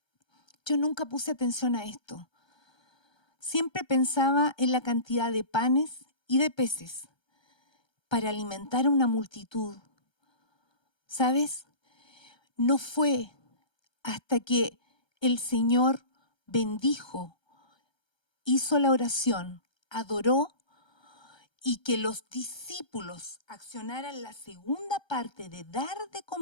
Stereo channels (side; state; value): right; late; 1.2 ms